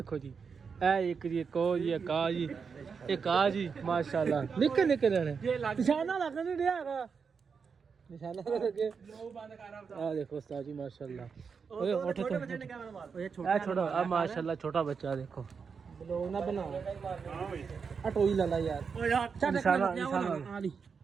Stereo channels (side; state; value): left; quieter; 5.8 dB